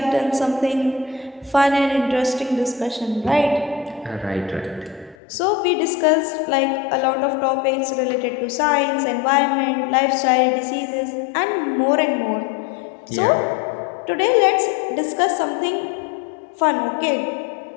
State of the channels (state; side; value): drops out; right; at 5.2 s